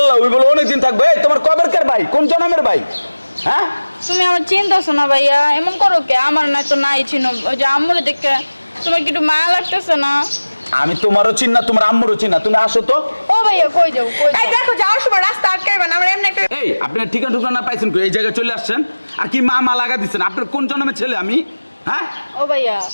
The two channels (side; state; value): both; inverted; correlation -1.00